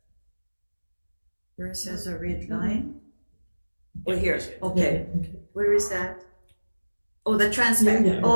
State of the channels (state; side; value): inverted; both; correlation -1.00